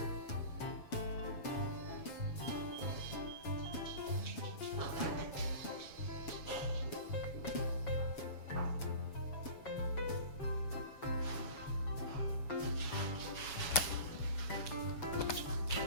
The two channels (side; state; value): right; late; 7.2 ms